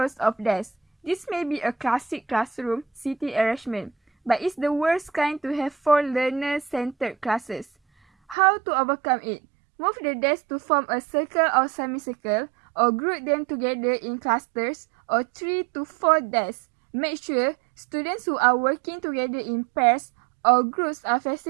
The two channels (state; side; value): drops out; left; at 8.3 s